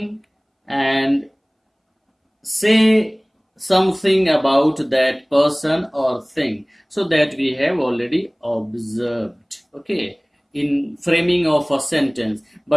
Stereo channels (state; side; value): identical; both; correlation 1.00